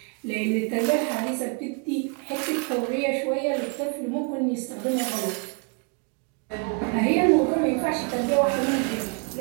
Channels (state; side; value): quieter; left; 35.5 dB